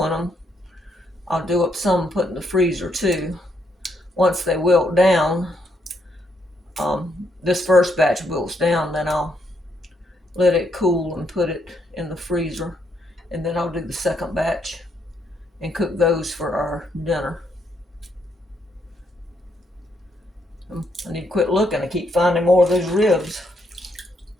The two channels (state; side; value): normal; both; correlation 0.75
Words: them, I'll do up some and put in the freezer too. Once they wilt down, this first batch wilts down, then I'll let it cool and put it in the freezer. And then I'll do the second batch and cook those for our dinner. I need to quit looking. I keep finding more of those ribs.